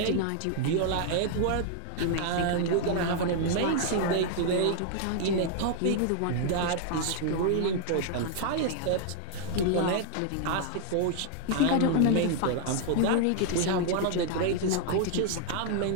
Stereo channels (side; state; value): both; different; correlation -0.01